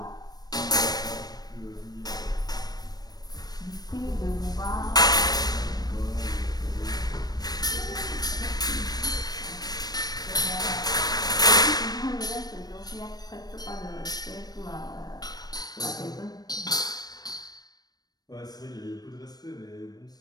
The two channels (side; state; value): right; late; 0.19 ms